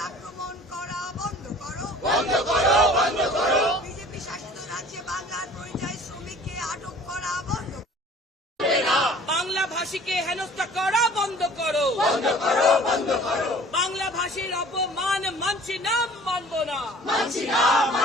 আক্রমণ করা বন্ধ করো। বিজেপি শাসিত রাজ্যে বাংলার পরিযায়ী শ্রমিককে আটক করা বন্ধ করো। বাংলা ভাষীকে হেনস্থা করা বন্ধ করো। বাংলা ভাষীর অপমান মানছি না, মানব না।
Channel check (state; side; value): normal; both; correlation 0.49